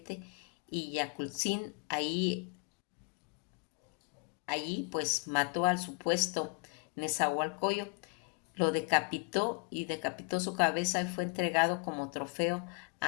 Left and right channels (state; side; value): quieter; right; 35.1 dB